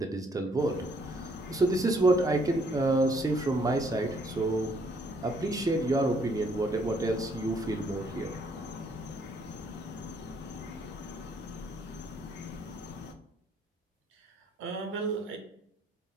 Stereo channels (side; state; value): both; normal; correlation 0.66